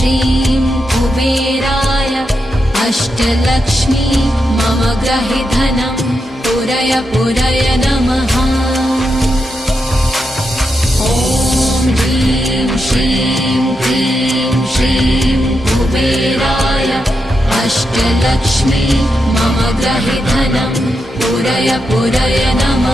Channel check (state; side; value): normal; both; correlation 0.85